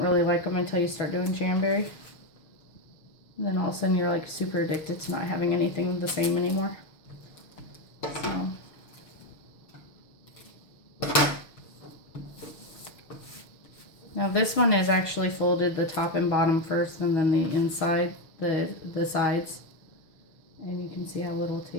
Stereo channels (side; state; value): right; late; 6.3 ms